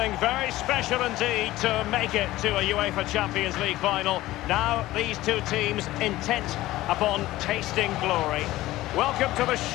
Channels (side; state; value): right; quieter; 16.7 dB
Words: very special indeed to make it to a UEFA Champions League final. Now these two teams intent upon tasting glory. Welcome to the